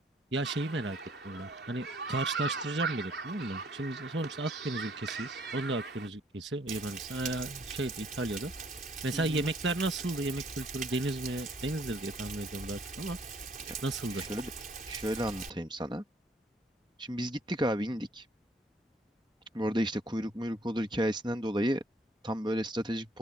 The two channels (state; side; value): normal; both; correlation 0.63